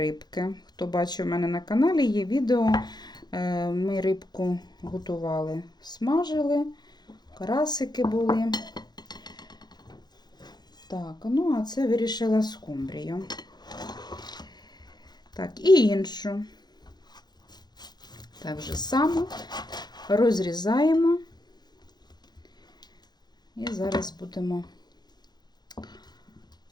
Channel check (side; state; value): right; late; 0.20 ms